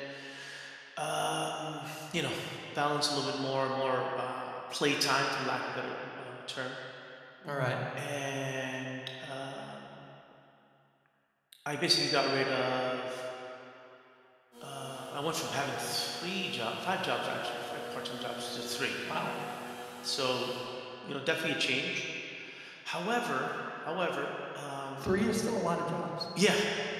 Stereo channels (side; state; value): both; identical; correlation 1.00